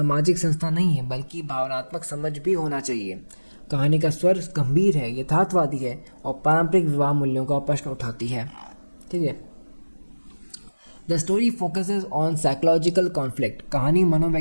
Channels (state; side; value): inverted; both; correlation -1.00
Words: संस्था नहीं है बल्कि भावनात्मक समझ भी होना चाहिए। कहानी का स्वर गंभीर है, यथार्थवादी है और पारंपरिक विवाह मूल्यों का प्रश्न उठाती है। ठीक है। The story focuses on psychological conflict. कहानी